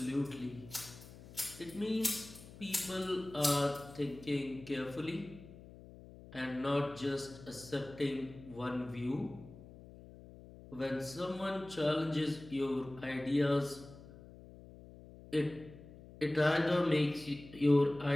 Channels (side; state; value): left; noise; hum, 18 dB below the sound